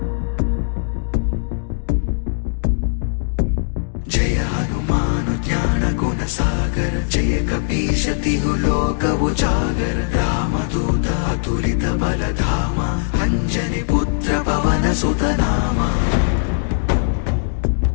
జయ హనుమాన్ జ్ఞాన గుణ సాగర జయ కపీశతిహు లోక ఉజాగర రామదూత అతులిత బలధామ అంజని పుత్ర పవన సుత నామ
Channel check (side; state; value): right; silent; digital silence